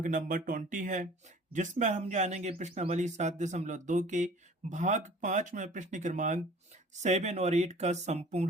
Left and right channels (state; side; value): normal; both; correlation 0.48